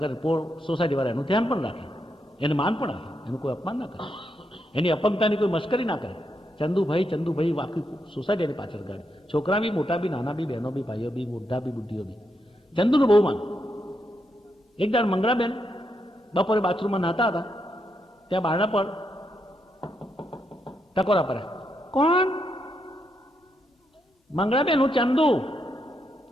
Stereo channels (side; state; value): both; normal; correlation 0.81